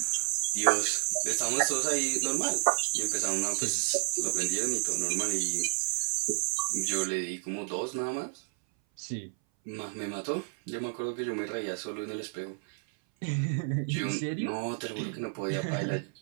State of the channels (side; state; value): left; silent; 57 dB below the other